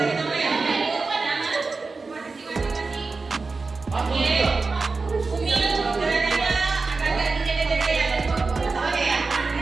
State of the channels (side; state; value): left; quieter; 4.0 dB